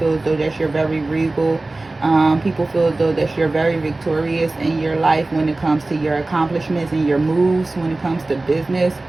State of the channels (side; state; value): left; quieter; 3.1 dB